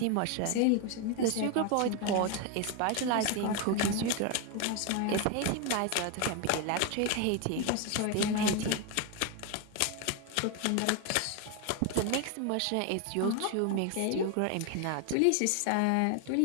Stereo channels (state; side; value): different; both; correlation 0.01